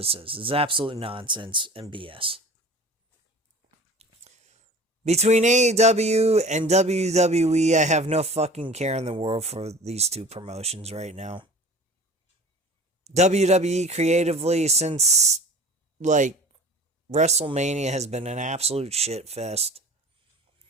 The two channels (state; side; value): normal; both; correlation 0.41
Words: is. It's absolute nonsense and BS. Between AEW and WWE, I have no fucking care in the world for these two promotions right now. WWE creatively, since, WrestleMania, has been an absolute shit fest.